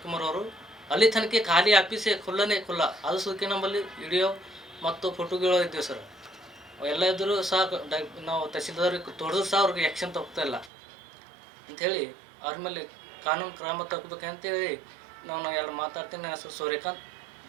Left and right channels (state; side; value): drops out; left; at 10.7 s